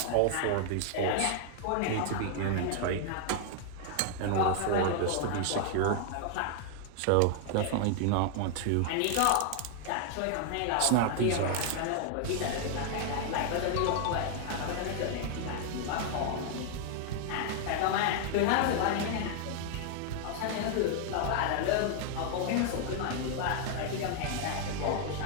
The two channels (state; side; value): different; both; correlation 0.00